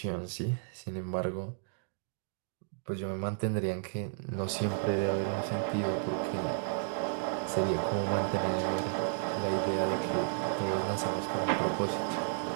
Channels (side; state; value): left; silent; digital silence